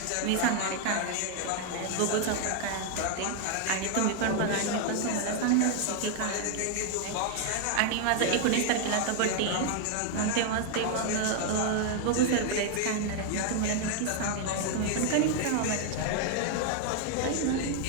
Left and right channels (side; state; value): both; different; correlation 0.00